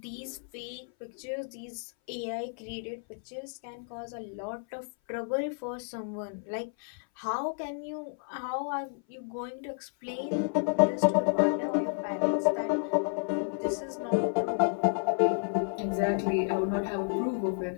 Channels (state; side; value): silent; right; 57 dB below the other